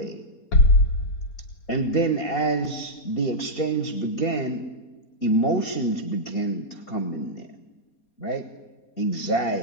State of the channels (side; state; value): right; late; 4.3 ms